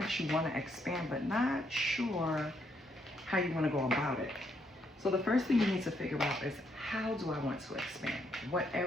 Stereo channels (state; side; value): normal; both; correlation 0.75